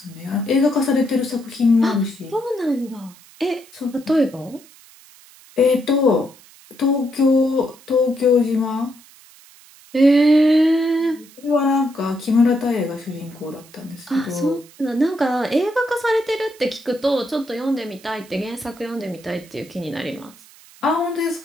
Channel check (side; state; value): right; noise; hiss, 24 dB below the sound